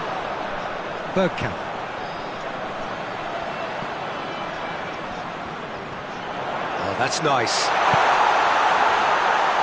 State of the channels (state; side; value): identical; both; correlation 1.00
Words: Bergkamp. Oh, that's nice.